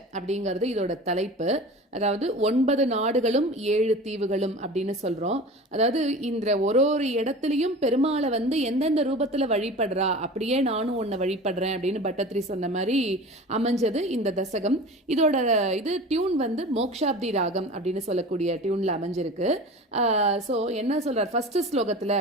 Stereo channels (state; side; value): normal; both; correlation 0.36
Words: அப்படிங்கிறது இதோட தலைப்பு. அதாவது 9 நாடுகளும் 7 தீவுகளும் அப்படின்னு சொல்றோம். அதாவது இந்த ஒரு இடத்துலயும் பெருமாளை எந்தெந்த ரூபத்துல வழிபடுறா, அப்படியே நானும் உன்னை வழிபடுறேன் அப்படின்னு பட்டத்ரி சொன்ன மாதிரி அமைஞ்சது இந்த தசகம். இதோட டியூன் மோக்ஷாப்தி ராகம் அப்படின்னு சொல்லக்கூடிய டியூன்ல அமைஞ்சிருக்கு. ஸோ என்ன சொல்றார் ஃபர்ஸ்ட் ஸ்லோகத்துல